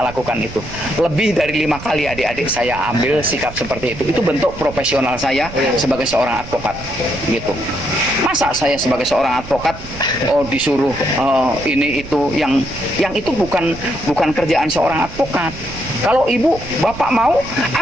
lakukan itu. Lebih dari 5 kali adik-adik saya ambil sikap seperti itu. Itu bentuk profesional saya sebagai seorang advokat. Gitu. Masa saya sebagai seorang advokat disuruh ini itu yang itu bukan kerjaan seorang advokat. Kalau ibu bapak mau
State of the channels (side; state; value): right; noise; rumble, 13 dB below the sound